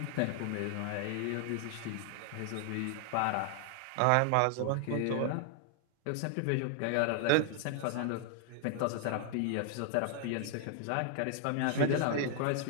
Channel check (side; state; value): both; different; correlation 0.00